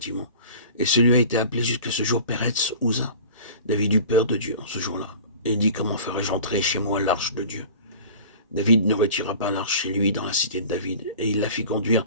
Et celui a été appelé jusqu'à ce jour Péretz Uza. David eut peur de Dieu en ce jour-là. Et il dit, comment ferais-je entrer chez moi l'arche de Dieu? David ne retira pas l'arche chez lui dans la cité de David, et il la fit conduire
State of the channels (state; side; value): inverted; both; correlation -0.40